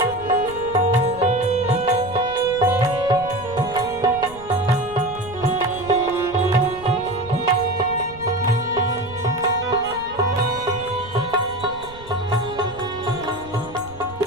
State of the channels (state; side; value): noise; right; rumble, 18 dB below the sound